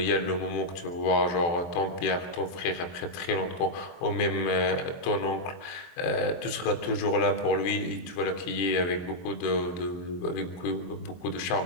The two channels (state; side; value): late; right; 23 ms